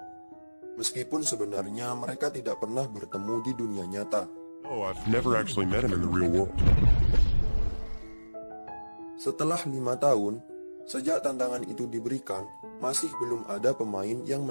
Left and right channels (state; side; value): inverted; both; correlation -1.00